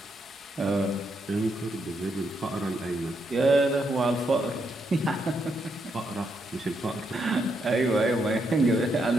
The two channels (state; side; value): normal; both; correlation 0.79